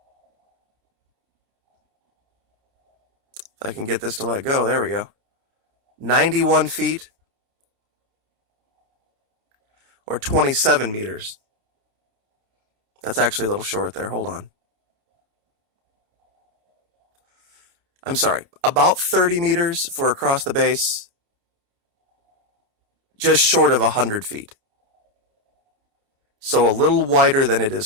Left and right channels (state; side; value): late; left; 29 ms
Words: If I can get this to let go, there we go. 91 feet, or 27 meters. That's actually a little short there. Hold on. I'm sorry. About 30 meters for across the base. Just short of 100 feet. So a little wider than it